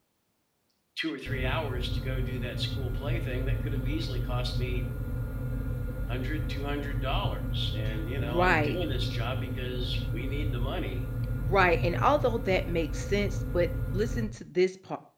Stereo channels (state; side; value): identical; both; correlation 1.00